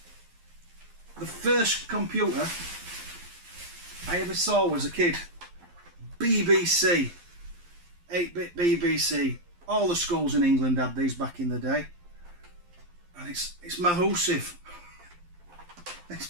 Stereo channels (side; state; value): left; late; 11 ms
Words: the first computer I ever saw as a kid. BBC, 8-bit BBC. All the schools in England had these back in the day. And it's massive.